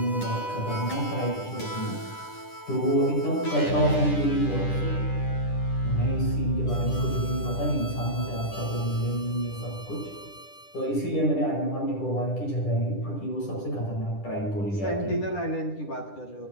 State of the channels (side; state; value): right; late; 10 ms